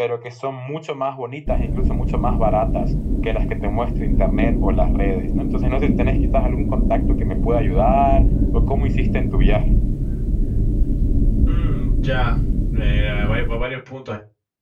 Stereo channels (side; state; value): both; identical; correlation 1.00